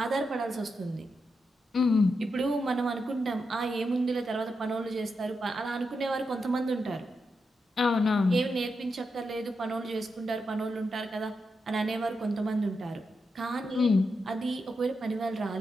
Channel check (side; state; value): both; normal; correlation 0.86